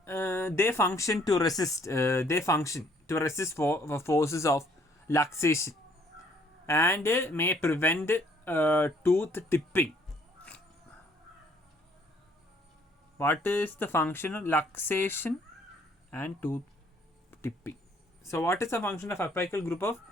They function to resist. Forces of luxation and may prevent tooth tipping. What is the function of luxation and tooth tipping? So what is the function of apical group of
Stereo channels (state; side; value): normal; both; correlation 0.63